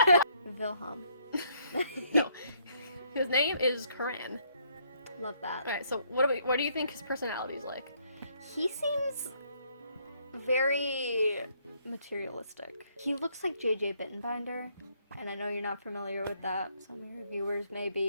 Wilhelm. No. His name is Karan. Love that. Alright, so what do you think his personality is like? He seems very materialistic. He looks like JJ Bittenbinder, and I know you're not familiar with that. Some of your viewers may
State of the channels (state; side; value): inverted; both; correlation -0.69